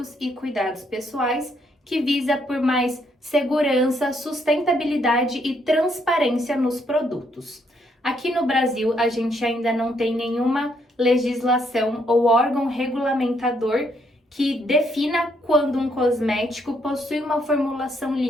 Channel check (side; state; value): both; normal; correlation 0.73